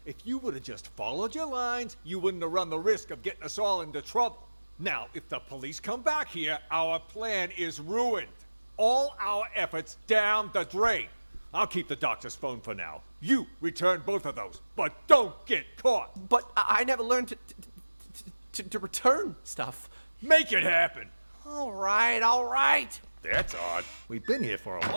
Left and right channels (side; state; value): both; inverted; correlation -1.00